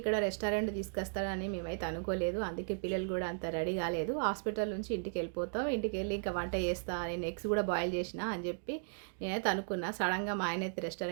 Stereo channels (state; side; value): silent; left; digital silence